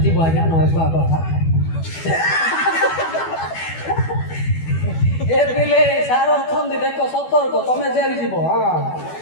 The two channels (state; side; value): late; right; 12 ms